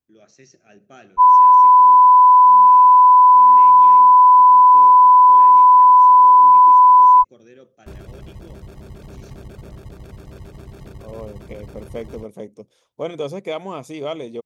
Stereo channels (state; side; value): identical; both; correlation 1.00